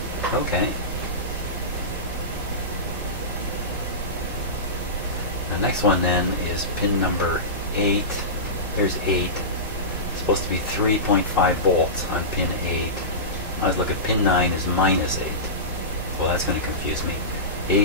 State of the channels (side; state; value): both; normal; correlation -0.19